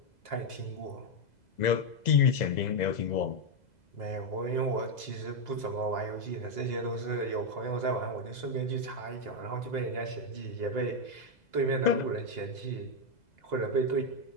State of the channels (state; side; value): late; right; 2.0 ms